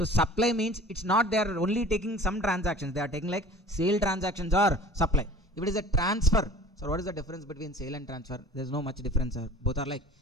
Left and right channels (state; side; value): normal; both; correlation 0.46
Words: supply means it's not they are only taking some transactions, they are taking like sale transactions or supply. If it is a transfer, so what is the difference between sale and transfer? There is no much difference, sir. Both are like